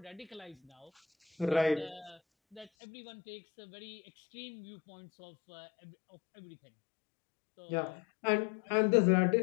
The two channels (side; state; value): right; drops out; at 2.7 s